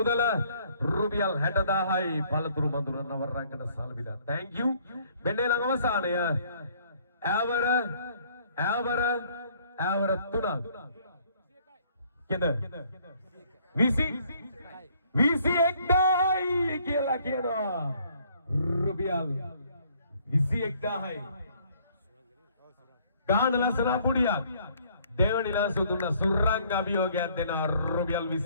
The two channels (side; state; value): both; inverted; correlation -0.62